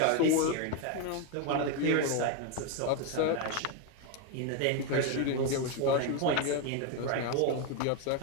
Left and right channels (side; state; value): both; different; correlation 0.01